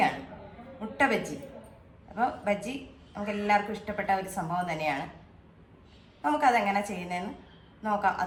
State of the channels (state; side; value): identical; both; correlation 1.00